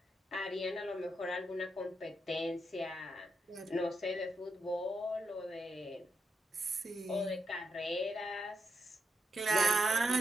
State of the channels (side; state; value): both; normal; correlation 0.82